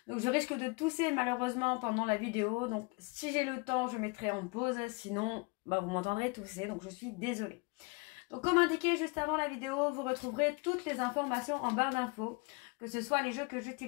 Donc je risque de tousser malheureusement pendant la vidéo. Donc si j'ai le temps, je mettrai en pause, sinon vous m'entendrez tousser, donc je suis désolée. Donc comme indiqué juste avant la vidéo, vous retrouverez toutes les informations en barre d'infos, que ce soit les jeux que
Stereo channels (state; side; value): quieter; right; 29.0 dB